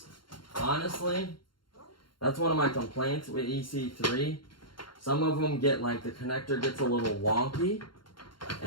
Honestly, that's one of my complaints with EC3. Some of them get like the connector gets a little wonky,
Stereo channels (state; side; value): late; right; 0.72 ms